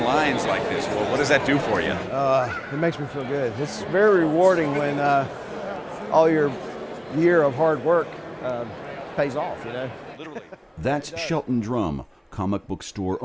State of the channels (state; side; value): identical; both; correlation 1.00